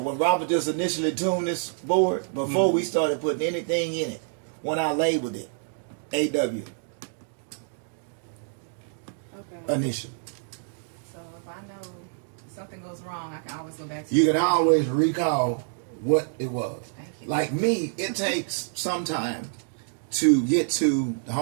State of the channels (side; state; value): left; silent; digital silence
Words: Robert just initially tuned this board, before we started putting anything in it, when I labeled it, AW. Okay. Initial. So if I know something goes wrong, I can always go back to You can always recall what it was. Thank you. Like me, it takes some time to get to the